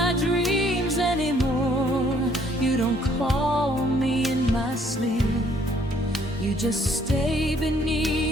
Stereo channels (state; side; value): normal; both; correlation 0.64